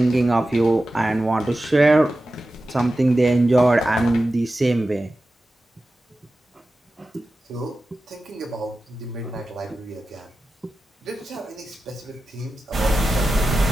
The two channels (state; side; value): normal; both; correlation 0.93